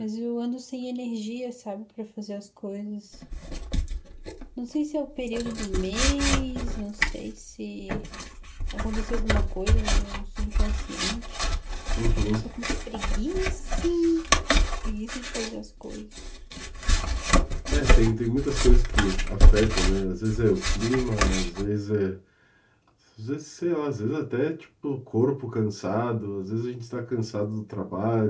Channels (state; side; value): identical; both; correlation 1.00